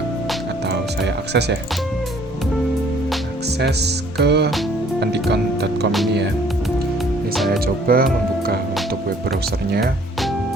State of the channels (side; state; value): both; normal; correlation 0.59